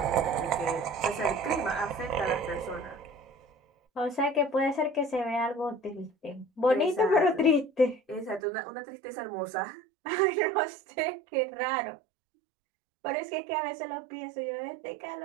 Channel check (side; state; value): left; drops out; at 8.4 s